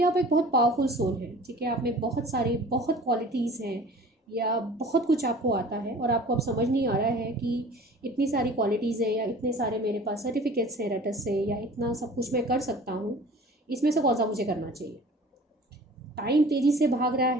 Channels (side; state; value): both; normal; correlation 0.45